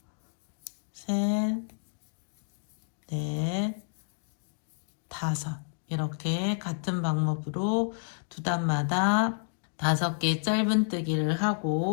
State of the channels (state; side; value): silent; right; digital silence